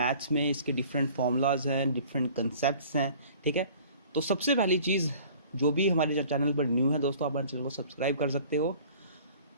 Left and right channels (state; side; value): inverted; both; correlation -0.49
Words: में इसके डिफरेंट फॉर्मूलाज हैं, डिफरेंट कंसेप्ट्स हैं। ठीक है, तो सबसे पहली चीज़, जो भी हमारे चैनल पर न्यू है दोस्तों, आप हमारे चैनल को सब्सक्राइब कर सकते हो।